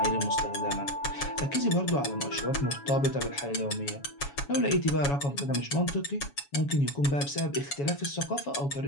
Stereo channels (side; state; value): right; late; 7.2 ms